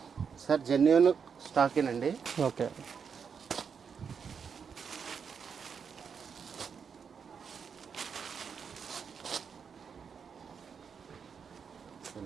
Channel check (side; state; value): left; quieter; 6.5 dB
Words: సార్ జెన్యున్ స్టాకేనండి. ఓకే.